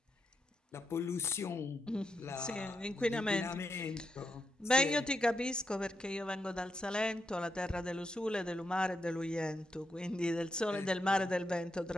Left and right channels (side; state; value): both; normal; correlation 0.83